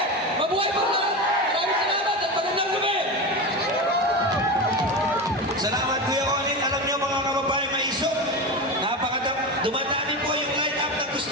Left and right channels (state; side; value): normal; both; correlation 0.22